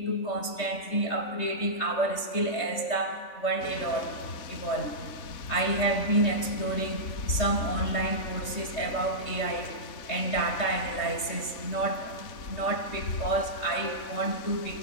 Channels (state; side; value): late; right; 3.5 ms